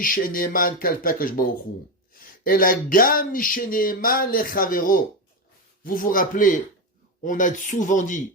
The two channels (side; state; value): both; normal; correlation 0.13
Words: ne'eman kalpe Akadosh Baruch Hu. Ela gam mishe ne'eman lechavero. Vous vous rappelez, on a souvent